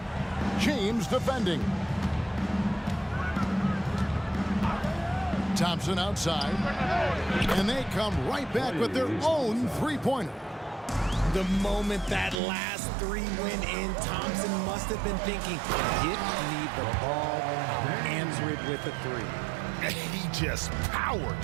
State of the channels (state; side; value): drops out; left; at 12.4 s